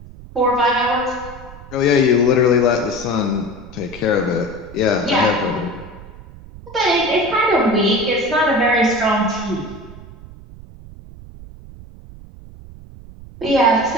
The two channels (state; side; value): noise; right; rumble, 18 dB below the sound